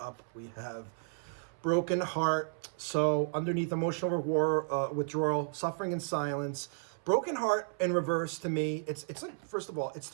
we have broken heart. So underneath emotional withdrawal, suffering in silence, broken heart in reverse to me, it's like, first of all, it's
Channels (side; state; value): left; silent; 56 dB below the other